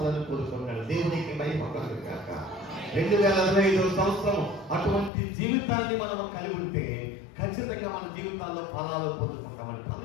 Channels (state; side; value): drops out; right; at 5.1 s